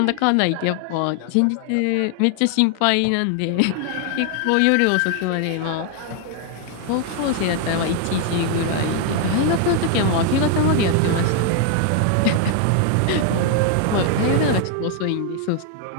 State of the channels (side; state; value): both; different; correlation 0.00